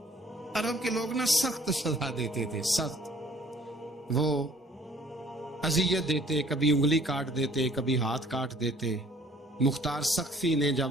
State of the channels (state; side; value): normal; both; correlation 0.57